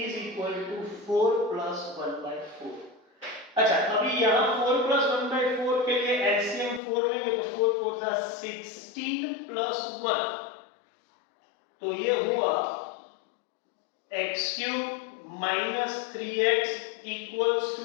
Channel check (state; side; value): drops out; right; at 6.8 s